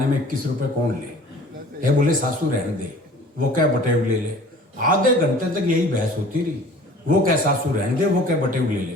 में 21 रुपए कौन ले? बोले सासू रहने दे, वो क्या बटेव ले ले। आधे घंटे तक यही बहस होती रही। वो क्या सासू रहने दे, वो क्या बटेव ले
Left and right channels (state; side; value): normal; both; correlation 0.47